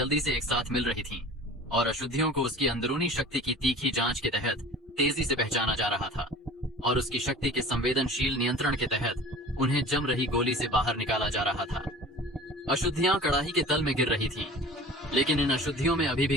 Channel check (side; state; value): both; normal; correlation 0.41